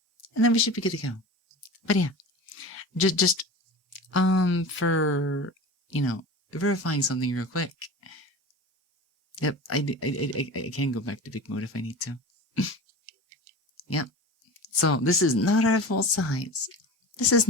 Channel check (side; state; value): both; normal; correlation 0.33